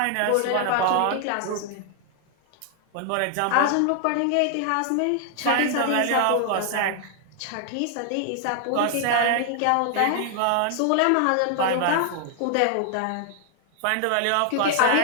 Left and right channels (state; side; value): different; both; correlation 0.00